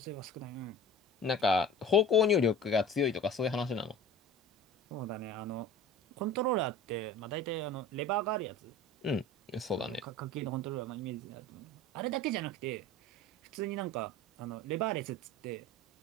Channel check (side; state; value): both; normal; correlation 0.39